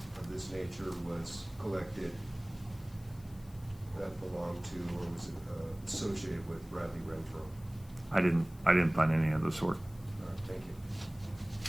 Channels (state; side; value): noise; left; hiss, 25 dB below the sound